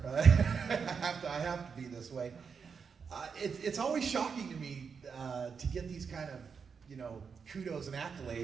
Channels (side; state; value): left; quieter; 6.0 dB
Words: I have to be this way. It's always shocking to me to get these kind of, kudos and